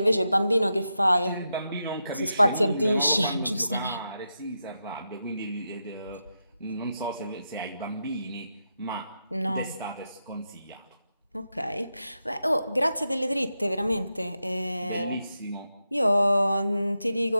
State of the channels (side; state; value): both; inverted; correlation -0.87